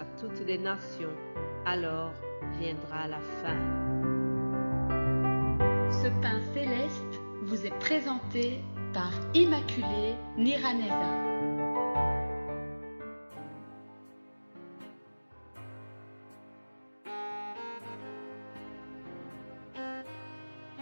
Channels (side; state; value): both; inverted; correlation -1.00